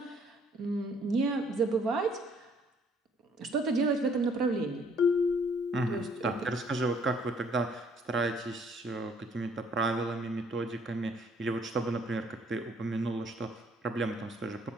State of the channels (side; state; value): both; normal; correlation 0.62